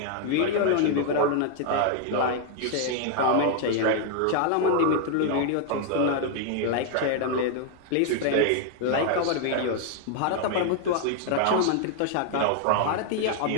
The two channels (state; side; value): different; both; correlation 0.00